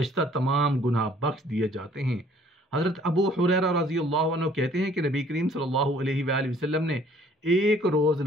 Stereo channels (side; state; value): both; normal; correlation 0.58